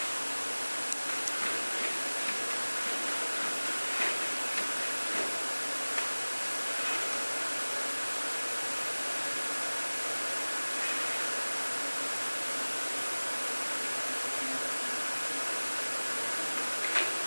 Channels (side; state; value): both; inverted; correlation -1.00